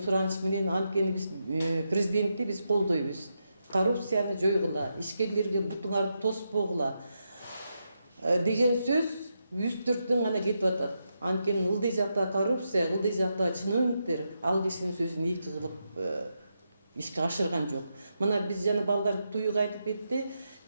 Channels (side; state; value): both; inverted; correlation -0.85